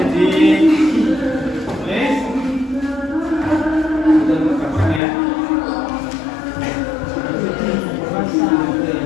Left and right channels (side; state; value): right; drops out; at 5.0 s